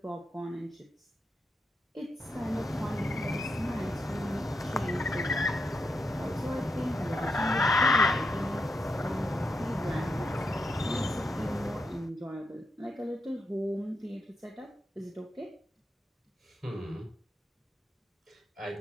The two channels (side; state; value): both; normal; correlation 0.84